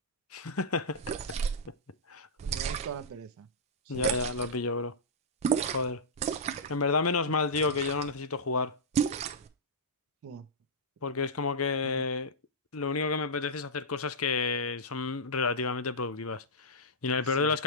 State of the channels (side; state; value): both; normal; correlation -0.12